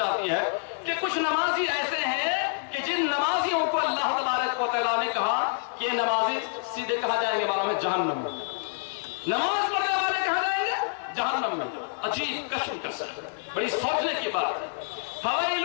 ہے کہ کچھ نمازی ایسے ہیں کہ جن نمازیوں کو اللہ تبارک و تعالیٰ نے کہا کہ یہ نمازی سیدھے کہاں جائیں گے معلوم ہے؟ جہنم میں. نماز پڑھنے والے کہاں جائیں گے؟ جہنم میں. عجیب کشم کس ہے, بڑی سوچنے کی بات ہے.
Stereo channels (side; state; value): right; silent; 58 dB below the other